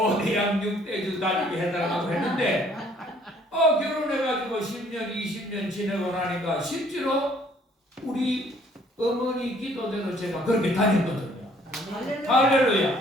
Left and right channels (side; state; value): both; normal; correlation 0.60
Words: 6대주 다니게 해달라고 했는데 결혼해가지고 10년 20년 지내고 나니까 실제로 우리 어머니 기도대로 제가 그렇게 다녔거든요.